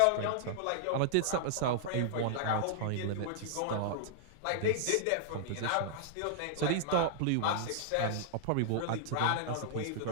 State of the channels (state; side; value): different; both; correlation -0.01